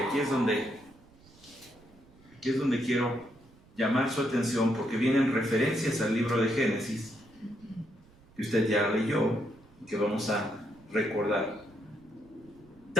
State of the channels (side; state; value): right; noise; rumble, 26 dB below the sound